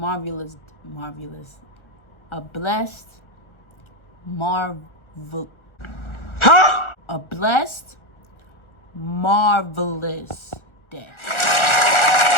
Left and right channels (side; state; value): right; late; 1.4 ms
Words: a blessed, marvelous day.